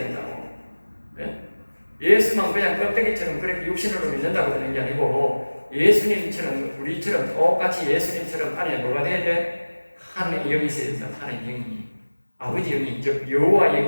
네? 예수만 그냥 껍데기처럼 그렇게 육신으로 믿는다고 되는 게 아니고, 예수님처럼 우리처럼 똑같이 예수님처럼 안에 뭐가 돼야 돼? 하나님의 영이 있어야 된다. 하나님의 영이, 아버지 영이, 즉 여호와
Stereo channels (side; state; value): both; inverted; correlation -1.00